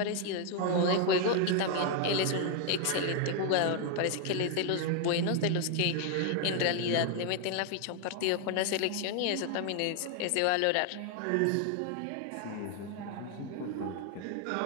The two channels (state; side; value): different; both; correlation 0.00